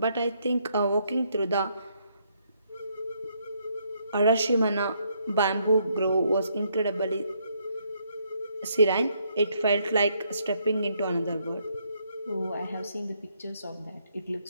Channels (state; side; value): inverted; both; correlation -0.73